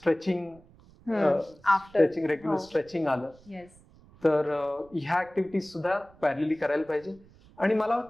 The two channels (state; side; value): noise; right; rumble, 26 dB below the sound